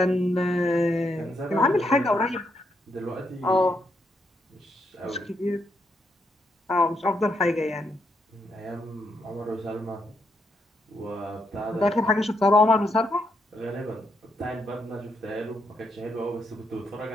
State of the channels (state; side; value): normal; both; correlation 0.78